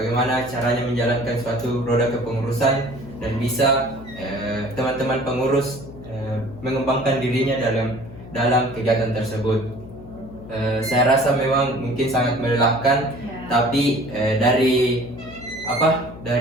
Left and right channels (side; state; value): left; noise; hum, 16 dB below the sound